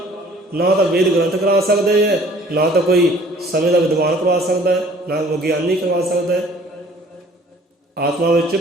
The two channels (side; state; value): both; normal; correlation 0.54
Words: ना तो वेद ग्रंथ करा सकते हैं, ना तो कोई समय का विद्वान करवा सकता है, ना विज्ञानी करवा सकता है। आत्मा विच